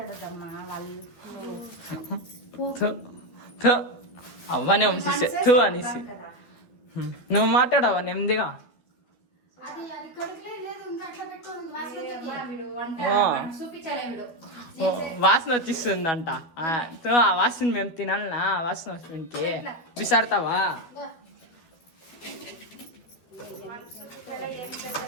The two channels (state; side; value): late; right; 12 ms